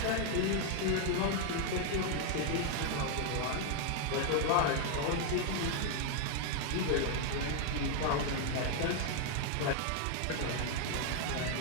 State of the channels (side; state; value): both; different; correlation 0.00